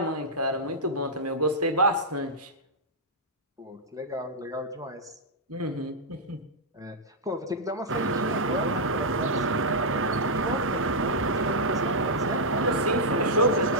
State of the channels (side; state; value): both; normal; correlation -0.08